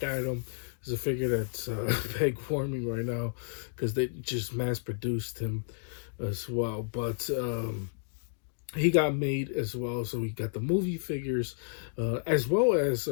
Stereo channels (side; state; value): right; silent; digital silence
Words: Adam is a figure that's peg warming right now because they just mass produced him as well. But he got made as well, so we got the movie figures as well as